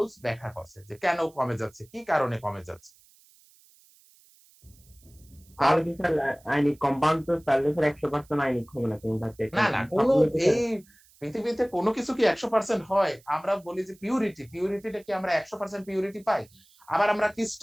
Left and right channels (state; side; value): noise; right; hiss, 29 dB below the sound